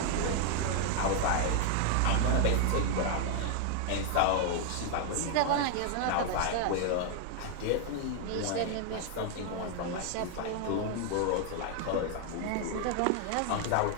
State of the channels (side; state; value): both; different; correlation 0.00